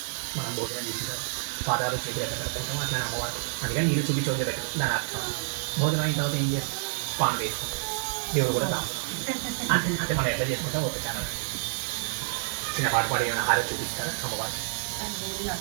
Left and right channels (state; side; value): silent; left; digital silence